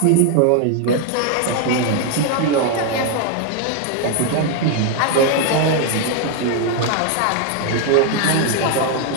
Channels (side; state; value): both; different; correlation 0.01